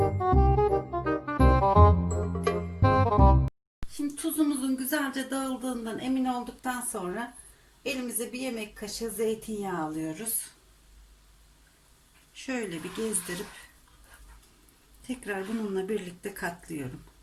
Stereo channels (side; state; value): both; identical; correlation 1.00